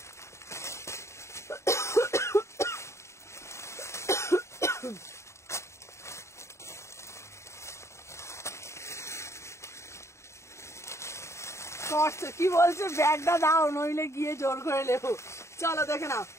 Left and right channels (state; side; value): late; right; 0.14 ms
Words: কটসেট কি বলছে, ব্যাগটা দাও নইলে গিয়ে জোর করে লেবো। চলো দেখে নাও,